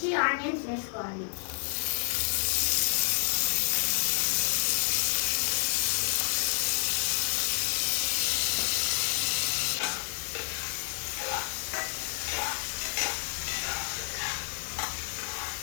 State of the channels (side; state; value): right; silent; digital silence